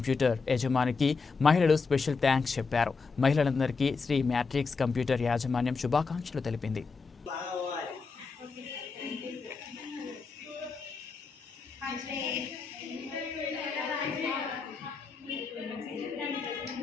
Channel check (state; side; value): quieter; right; 4.7 dB